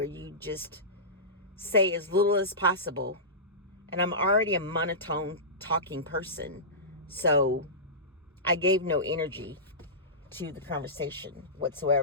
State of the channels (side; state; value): both; normal; correlation -0.19